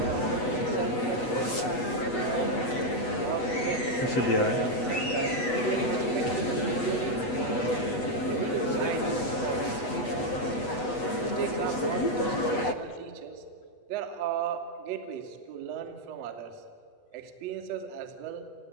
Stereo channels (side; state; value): right; late; 8.1 ms